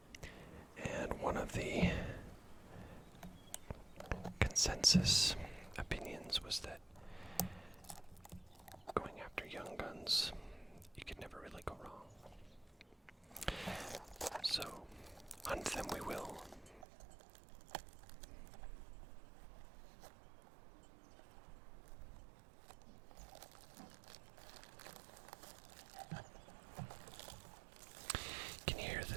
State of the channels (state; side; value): drops out; left; at 16.9 s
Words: And one of the consensus opinions was that going after Young Guns, you could never really go wrong. So, hunt them we will. You can hear